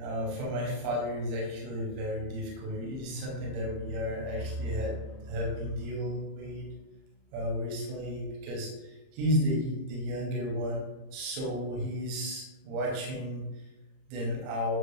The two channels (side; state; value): left; late; 30 ms